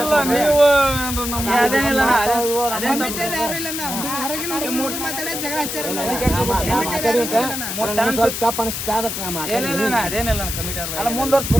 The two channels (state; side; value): noise; left; hiss, 4 dB below the sound